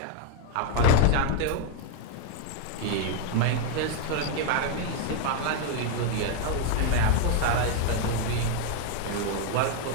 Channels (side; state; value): both; different; correlation 0.01